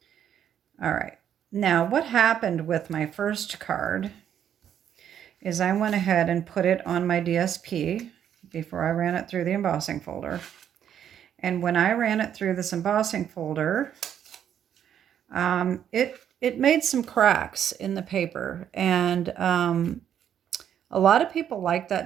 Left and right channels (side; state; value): left; quieter; 9.5 dB